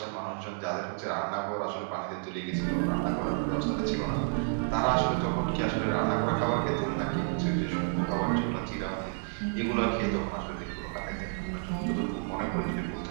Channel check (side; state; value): left; silent; 57 dB below the other